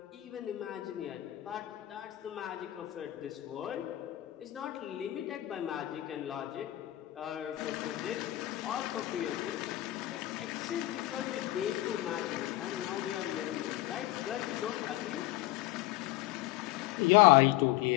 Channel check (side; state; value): right; quieter; 16.4 dB